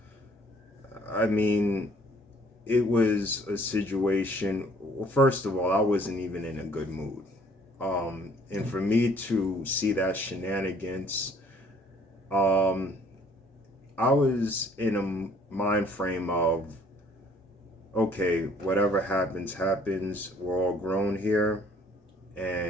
I mean, it was a situation. Well, first of all, I wasn't even in a good mood. And for me to see that shenanigans, I was in a mind frame of, okay, whatever happens, happens. We're all grown here,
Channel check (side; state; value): both; normal; correlation 0.58